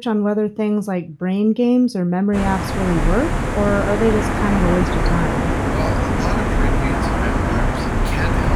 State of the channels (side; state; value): both; identical; correlation 1.00